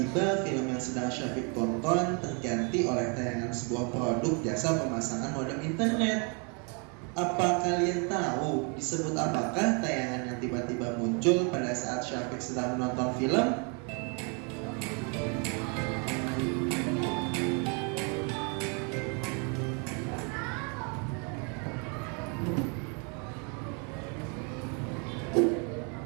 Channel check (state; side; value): quieter; left; 35.8 dB